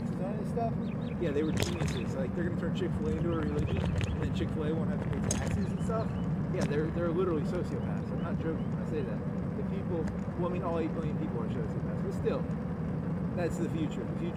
on it and stuff. Yeah, they were geniuses. Like they're gonna turn Chick-fil-A into a religion, and then Chick-fil-A won't have to pay taxes and stuff. Yeah, they're literally sociopaths. I'm not joking when I say that. The people, well, I mean, all 8 billion people are sociopaths, but still, that's the future. The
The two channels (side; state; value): both; identical; correlation 1.00